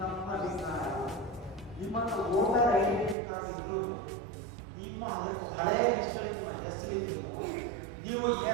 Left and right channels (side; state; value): left; drops out; at 3.2 s